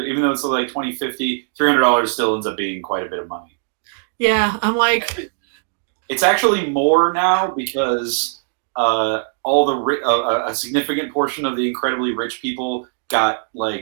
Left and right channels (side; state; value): left; silent; 65 dB below the other